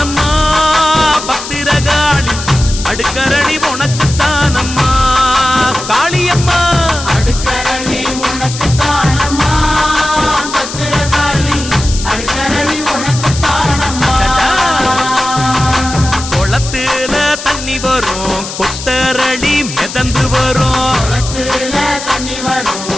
பத்திரகாளி அடுக்கரளி உனக்கு தானம்மா காளியம்மா அடுக்கரளி உனக்கு தானம்மா பத்திரகாளி அடுக்கரளி உனக்கு தானம்மா குளத்துல தண்ணி வரும் கொத்தரளி மிதந்து வரும் குளத்துல தண்ணி வரும்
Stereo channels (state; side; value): noise; left; hiss, 9 dB below the sound